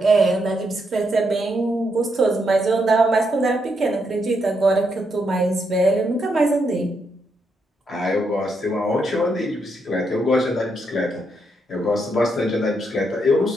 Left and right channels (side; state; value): both; normal; correlation 0.79